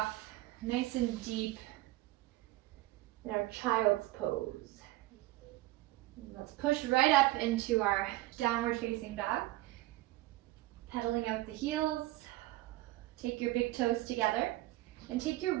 nice and deep in our child's pose. Let's push right up into our downward facing dog. Pedaling out the heels. Take your big toes together and take your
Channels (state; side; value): quieter; left; 17.8 dB